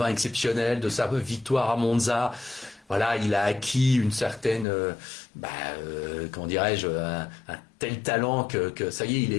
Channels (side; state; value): right; drops out; at 4.7 s